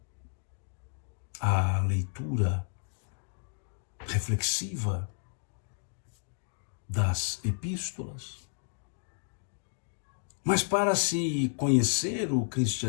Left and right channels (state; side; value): silent; right; digital silence